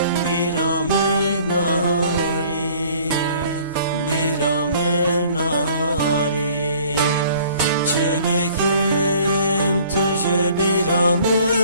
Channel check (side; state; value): both; inverted; correlation -0.54